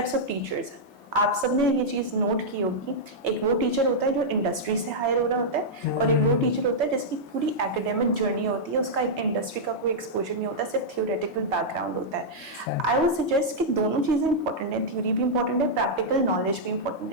of teachers. आप सबने ये चीज नोट की होगी, एक वो टीचर होता है जो इंडस्ट्री से हायर हो रहा होता है, और एक वो टीचर होता है जिसकी पूरी एकेडमिक जर्नी होती है, उसका इंडस्ट्री का कोई एक्सपोजर नहीं होता, सिर्फ थियोरेटिकल बैकग्राउंड होता है। आई वुड सजेस्ट कि दोनों चीजें इंपॉर्टेंट है, थ्योरी भी इंपॉर्टेंट है, प्रैक्टिकल नॉलेज भी इंपॉर्टेंट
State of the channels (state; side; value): normal; both; correlation -0.08